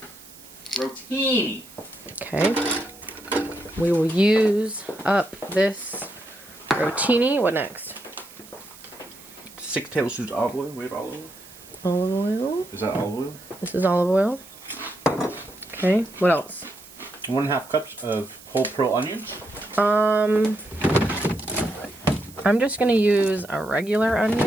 Rotini. Okay. We will use up this rotini. What next? 6 tablespoons olive oil. We have olive oil. Olive oil. Is that olive oil? This is olive oil. Okay. What else? 1.5 cups of whole pearl onions. I'm just gonna use a regular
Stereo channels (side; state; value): right; noise; hiss, 20 dB below the sound